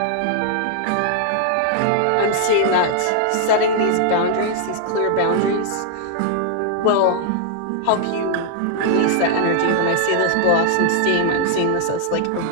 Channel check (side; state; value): both; different; correlation -0.01